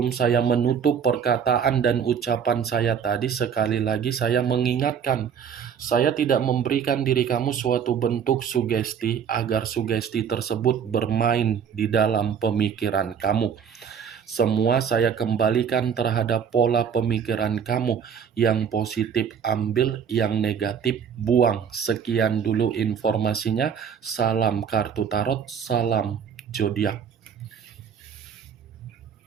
saya menutup perkataan dan ucapan saya tadi, sekali lagi saya mengingatkan, saya tidak memberikan diri kamu suatu bentuk sugesti agar sugesti tersebut bermain di dalam pemikiran kamu. Semua saya kembalikan terhadap pola pemikiran kamu. Yang positif ambil, yang negatif buang. Sekian dulu informasinya. Salam kartu tarot, salam zodiak.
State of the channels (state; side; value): quieter; left; 7.5 dB